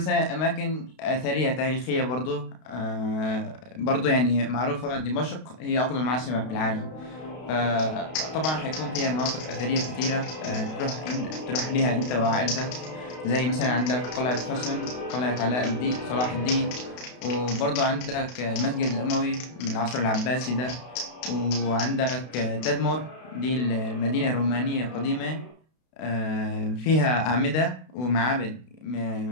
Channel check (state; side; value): late; right; 32 ms